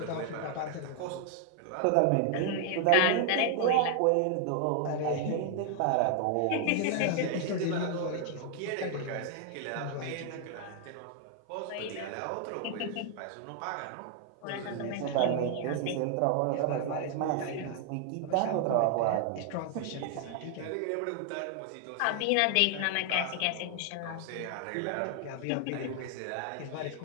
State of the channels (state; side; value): different; both; correlation 0.00